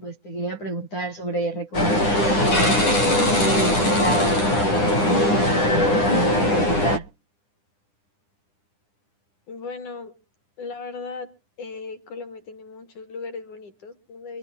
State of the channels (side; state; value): right; late; 9.9 ms